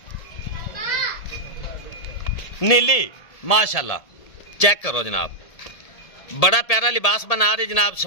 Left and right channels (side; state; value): right; late; 1.7 ms